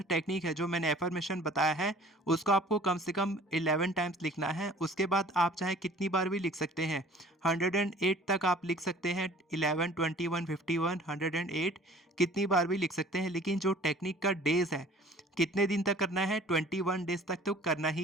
टेक्निक है, जो मैंने एफर्मेशन बताया है, उसको आपको कम से कम 11 टाइम्स लिखना है। उसके बाद आप चाहे कितनी बार भी लिख सकते हैं, 108 तक आप लिख सकते हैं। 11, 21, 51, 108 कितनी बार भी लिख सकते हैं। लेकिन जो टेक्निक का डेज है, कितने दिन तक करना है, 21 डेज तक तो करना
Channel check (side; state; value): both; normal; correlation 0.49